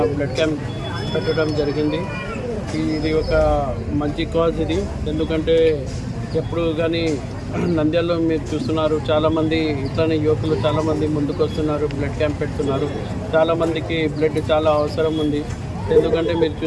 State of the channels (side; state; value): both; identical; correlation 1.00